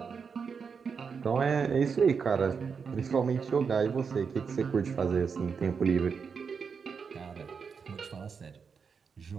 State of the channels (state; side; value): quieter; left; 5.9 dB